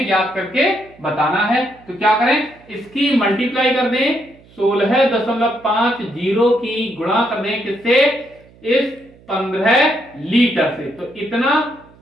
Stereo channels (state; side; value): noise; right; hum, 27 dB below the sound